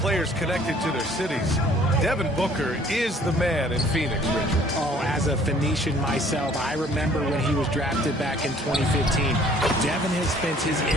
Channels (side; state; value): both; normal; correlation 0.56